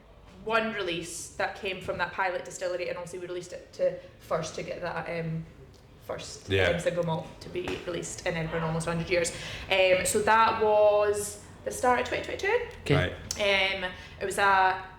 one release that came from that pilot distillery, and obviously we released it to get that first single malt to be released in Edinburgh in almost 100 years. So that was the start of 2022. Right. It was a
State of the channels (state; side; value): identical; both; correlation 1.00